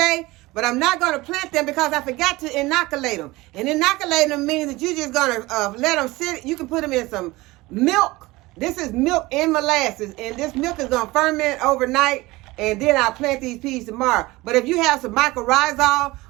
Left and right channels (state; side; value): quieter; left; 20.7 dB